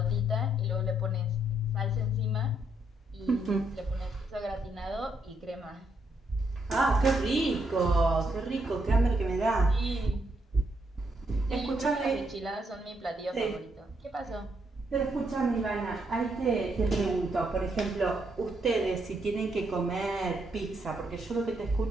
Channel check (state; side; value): normal; both; correlation 0.76